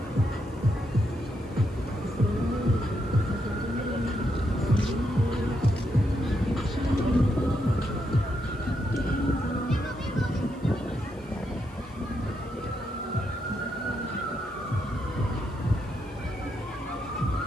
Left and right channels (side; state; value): right; noise; hiss, 29 dB below the sound